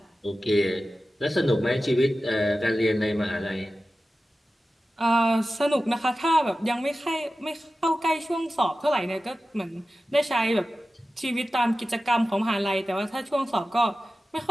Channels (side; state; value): both; normal; correlation 0.94